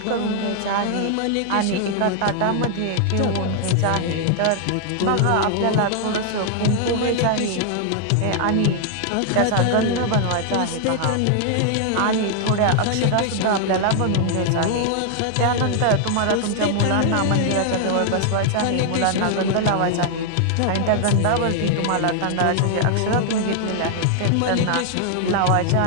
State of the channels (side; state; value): both; different; correlation 0.00